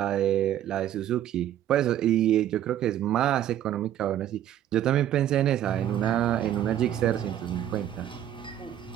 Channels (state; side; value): quieter; left; 11.4 dB